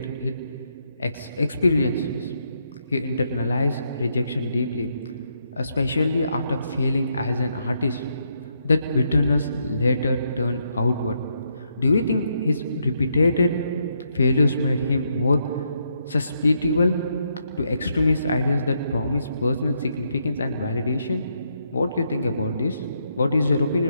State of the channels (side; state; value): both; inverted; correlation -0.77